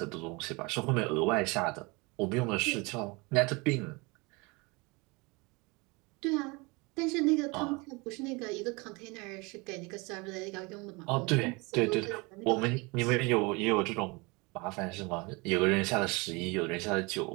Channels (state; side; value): quieter; left; 26.8 dB